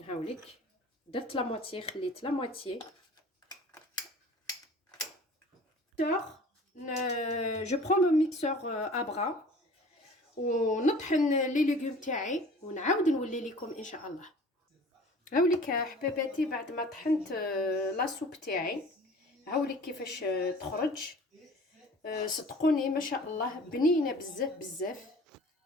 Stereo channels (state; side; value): normal; both; correlation 0.45